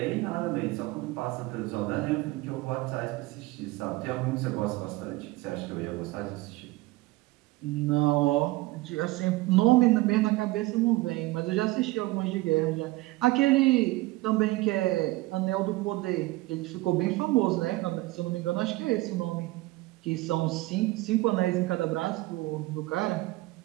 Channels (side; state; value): left; quieter; 19.9 dB